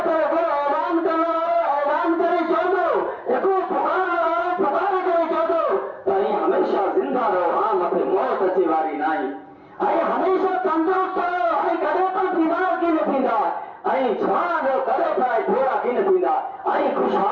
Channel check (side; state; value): both; identical; correlation 1.00